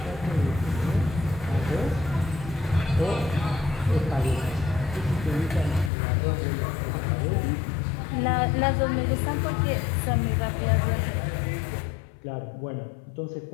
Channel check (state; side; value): drops out; right; at 5.9 s